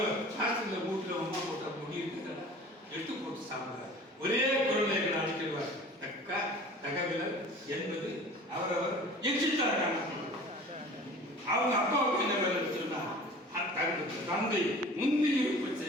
சாஸ்திர வீட்டில் அம்மா போட்ட முடி இருக்குது எடுத்து போட்டு சாப்பிடுறார். ஒரே குரலை அழைக்கிறார். தகவல் என்பது அவரவர் எச்சித்தார் காணப்படும். அவங்க அப்பாவுக்கு என்ன வேலை சொன்னா தந்தை முந்தி இருப்பு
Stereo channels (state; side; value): normal; both; correlation 0.43